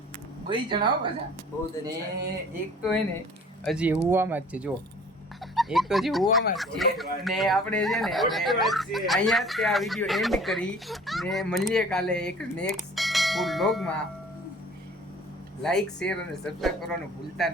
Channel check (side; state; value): both; normal; correlation 0.49